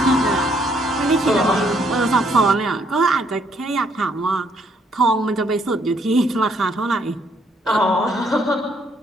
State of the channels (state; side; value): normal; both; correlation 0.69